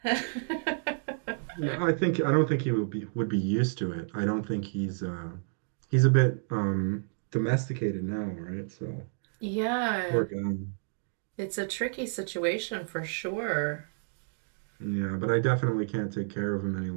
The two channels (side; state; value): left; silent; digital silence